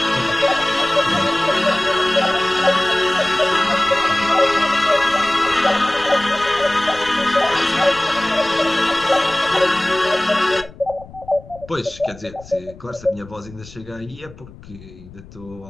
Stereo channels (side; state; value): left; noise; rumble, 20 dB below the sound